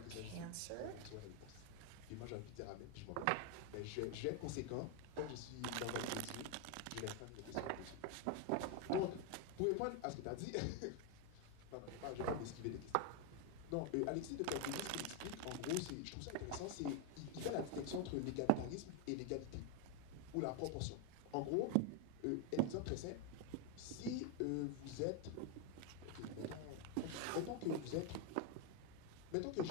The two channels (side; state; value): both; different; correlation 0.01